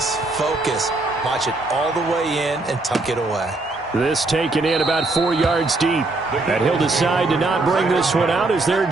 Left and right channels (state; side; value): quieter; left; 3.1 dB